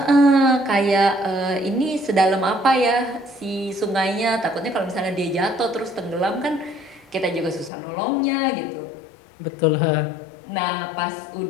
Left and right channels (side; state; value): right; drops out; at 7.7 s